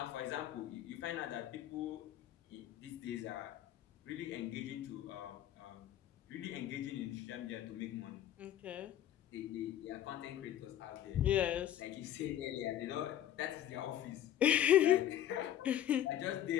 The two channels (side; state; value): right; quieter; 11.5 dB